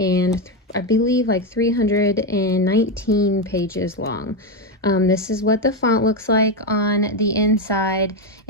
I believe like 319 pages long. This is what the font looks like on the inside,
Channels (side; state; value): both; normal; correlation 0.08